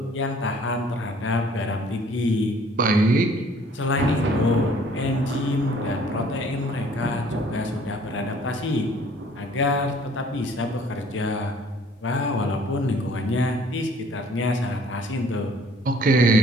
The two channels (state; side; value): normal; both; correlation 0.56